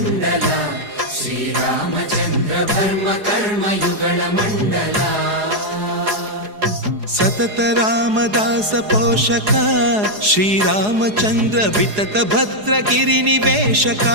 ಶ್ರೀರಾಮಚಂದ್ರ ಧರ್ಮ ಕರ್ಮ ಯುಗಳ ಮಂಡಲ ಸತತ ರಾಮದಾಸ ಪೋಷಕ ಶ್ರೀರಾಮಚಂದ್ರ ವಿತತ ಭದ್ರಗಿರಿ ನಿವೇಶಕ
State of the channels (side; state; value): left; late; 4.8 ms